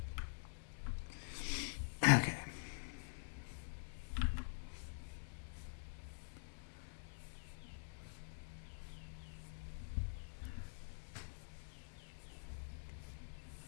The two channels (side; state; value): right; silent; digital silence